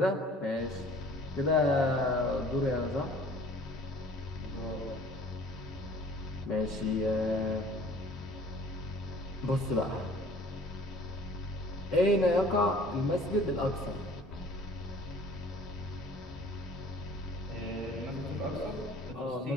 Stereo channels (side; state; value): both; normal; correlation 0.51